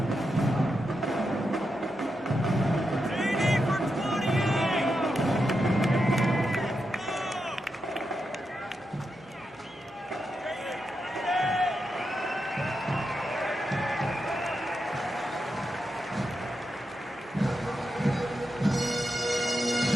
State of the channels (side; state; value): both; normal; correlation 0.86